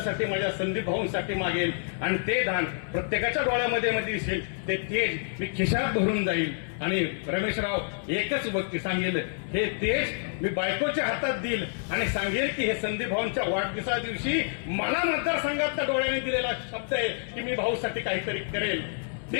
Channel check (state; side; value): silent; right; 59 dB below the other